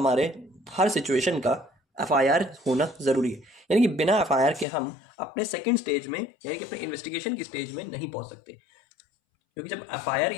हर सिचुएशन का एफआईआर होना जरूरी है, यानी कि बिना एफआईआर के हम अपने सेकंड स्टेज में, यानी कि अपने इन्वेस्टिगेशन की स्टेज में नहीं पहुंच सकते। क्योंकि जब एफआईआर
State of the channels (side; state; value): right; drops out; at 4.7 s